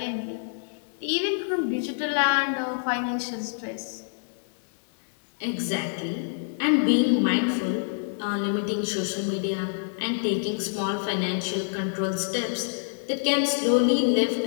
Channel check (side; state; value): right; silent; digital silence